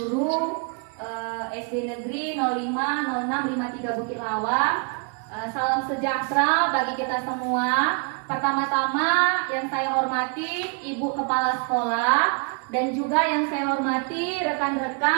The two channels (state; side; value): quieter; left; 36.9 dB